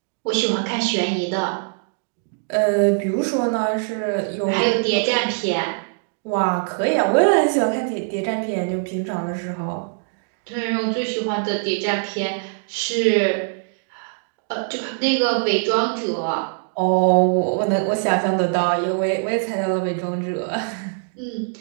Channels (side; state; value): left; silent; digital silence